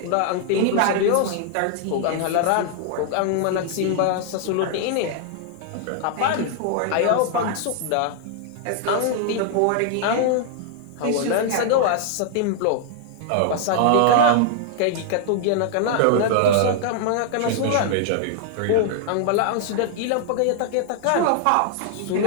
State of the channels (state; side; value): different; both; correlation 0.00